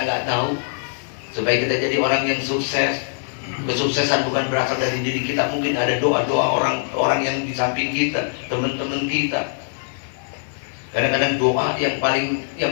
tahu, supaya kita jadi orang yang sukses. Kesuksesan bukan berasal dari diri kita. Mungkin ada doa-doa orang yang di samping kita, teman-teman kita. Kadang-kadang doa yang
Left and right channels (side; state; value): right; silent; 55 dB below the other